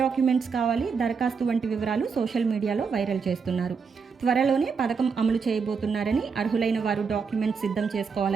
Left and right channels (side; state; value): left; quieter; 5.6 dB